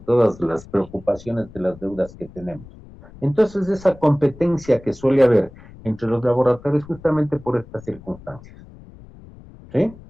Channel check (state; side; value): noise; left; rumble, 20 dB below the sound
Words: las preocupaciones de las deudas que tenemos. Entonces, esa competencia que suele haber entre los laboratorios justamente por estas circunstancias. ¿Sí?